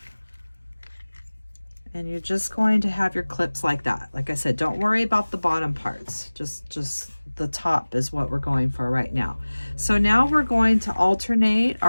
And you're just going to have your clips like that. Like I said, don't worry about the bottom parts. Just the top is what we're going for right now. So now we're going to alternate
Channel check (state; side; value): inverted; both; correlation -1.00